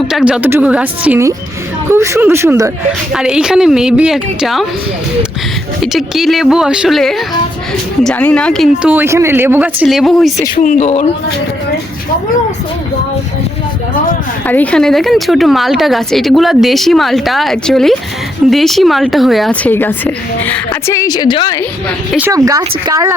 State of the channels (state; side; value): normal; both; correlation 0.78